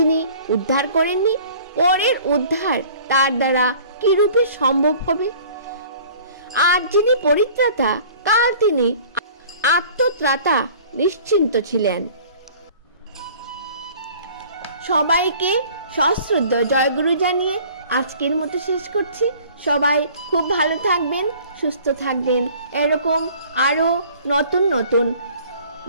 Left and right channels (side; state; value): both; inverted; correlation -0.49